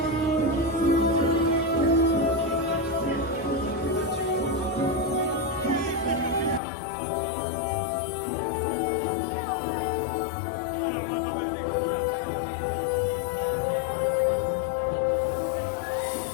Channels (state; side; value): drops out; right; at 6.6 s